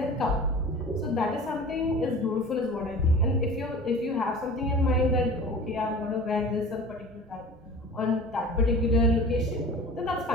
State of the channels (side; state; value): both; normal; correlation 0.40